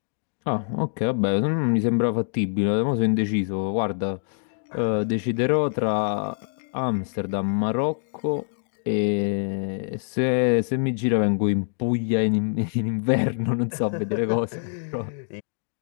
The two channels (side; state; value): right; silent; 62 dB below the other